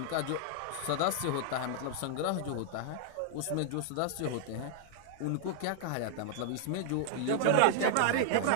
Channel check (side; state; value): both; different; correlation -0.01